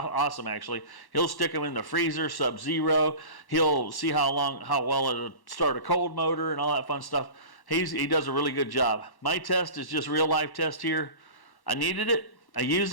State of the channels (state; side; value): late; right; 1.1 ms